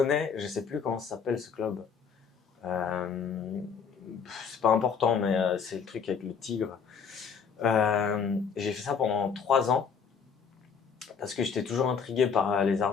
Je sais plus comment ça s'appelle ce club. Euh, c'est pas important, mais c'est le truc avec le tigre. J'ai fait ça pendant 3 ans parce que j'étais toujours intrigué par les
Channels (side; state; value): right; quieter; 6.3 dB